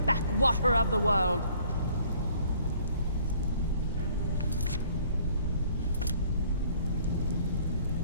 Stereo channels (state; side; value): inverted; both; correlation -0.58